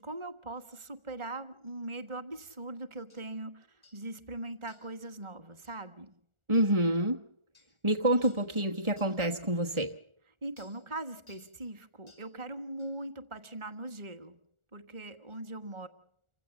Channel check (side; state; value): left; late; 1.4 ms